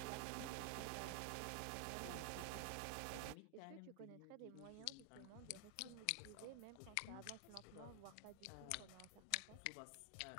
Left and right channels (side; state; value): both; different; correlation 0.00